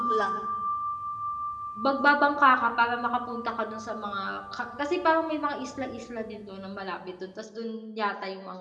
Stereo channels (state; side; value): identical; both; correlation 1.00